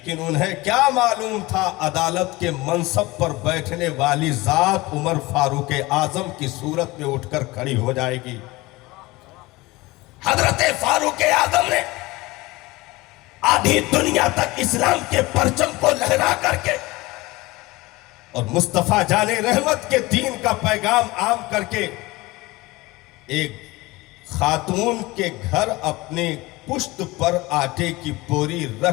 انہیں کیا معلوم تھا عدالت کے منصب پر بیٹھنے والی ذات عمر فاروق اعظم کی صورت میں اٹھ کر کھڑی ہو جائے گی۔ حضرت فاروق اعظم نے آدھی دنیا تک اسلام کے پرچم کو لہرا کر کے اور مصطفیٰ جان رحمت کے دین کا پیغام عام کر کے ایک خاتون کے گھر اپنے پشت پر آٹے کی بوری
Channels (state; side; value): quieter; right; 21.3 dB